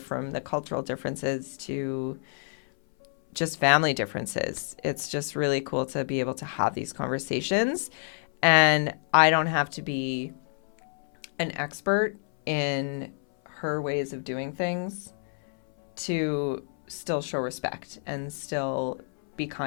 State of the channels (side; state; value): right; silent; 59 dB below the other